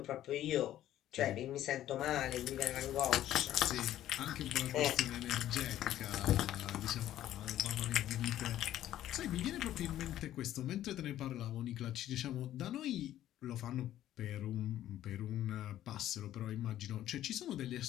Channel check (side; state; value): right; quieter; 12.7 dB